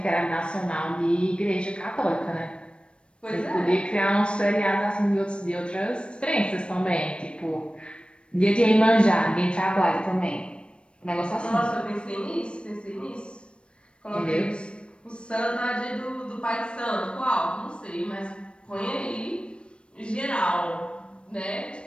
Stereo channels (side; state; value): right; late; 0.057 ms